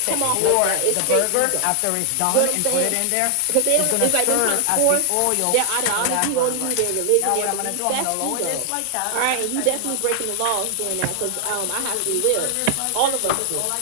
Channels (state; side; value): different; both; correlation 0.00